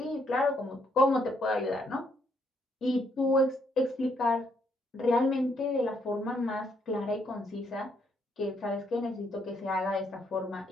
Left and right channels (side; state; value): both; normal; correlation 0.73